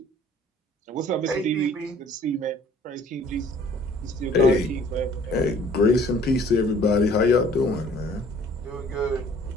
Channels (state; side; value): normal; both; correlation 0.54